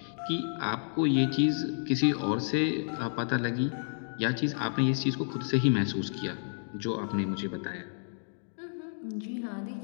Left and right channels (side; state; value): right; silent; digital silence